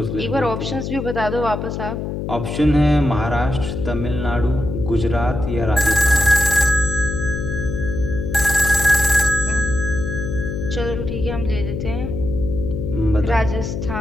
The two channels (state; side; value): noise; left; hum, 4 dB below the sound